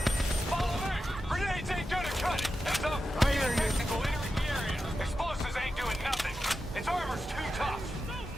Follow me! Grenades ain't gonna cut it! Heads up! I hear you. Technical entering the area! Explosives ain't doing nothing! Its armor's too tough!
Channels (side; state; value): both; normal; correlation 0.90